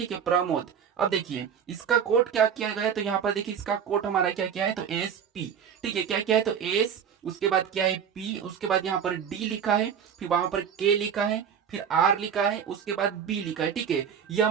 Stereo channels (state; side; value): quieter; left; 7.8 dB